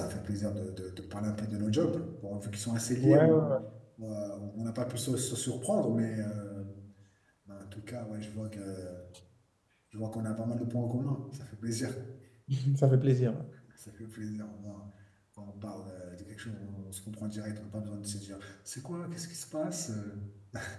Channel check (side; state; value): both; identical; correlation 1.00